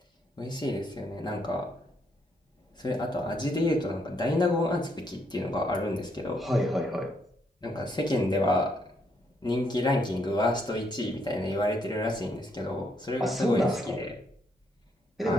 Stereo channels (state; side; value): normal; both; correlation 0.73